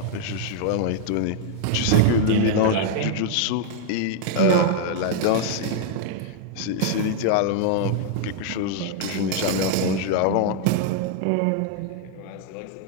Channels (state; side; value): different; both; correlation 0.00